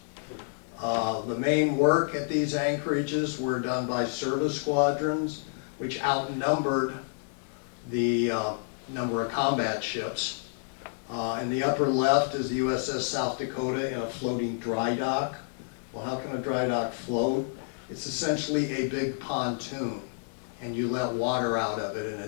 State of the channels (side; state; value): right; silent; digital silence